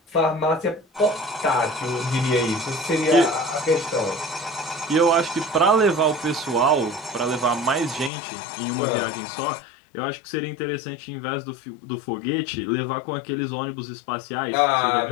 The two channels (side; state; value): right; drops out; at 8.1 s